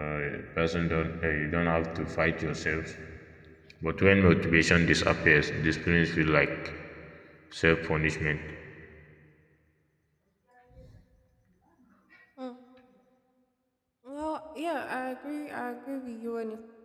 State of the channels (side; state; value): both; identical; correlation 1.00